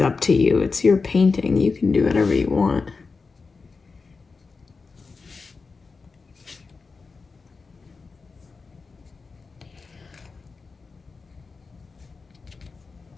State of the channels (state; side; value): quieter; right; 4.5 dB